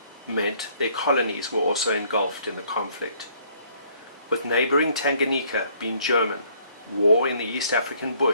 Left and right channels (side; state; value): both; inverted; correlation -0.63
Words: meant their colonies were also engulfed in the conflict. With neighboring Tanganyika being German, war in the East African